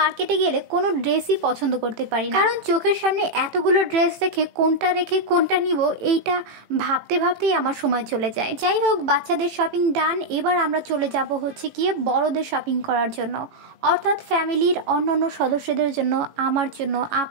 গেলে কোনো ড্রেসই পছন্দ করতে পারি না, কারণ চোখের সামনে এতগুলো ড্রেস দেখে কোনটা রেখে কোনটা নিব এইটা ভাবতে ভাবতেই আমার সময় চলে যায়। যাই হোক, বাচ্চাদের শপিং ডান। এবার আমরা চলে যাব হচ্ছে গিয়ে বড়দের শপিং করার জন্য, অর্থাৎ ফ্যামিলির অন্যান্য সদস্যদের জন্য, আমার জন্য,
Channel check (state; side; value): late; left; 18 ms